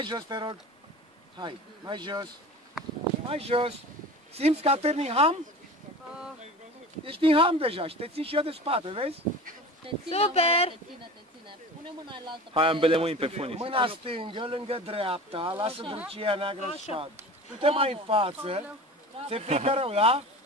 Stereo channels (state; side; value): normal; both; correlation 0.36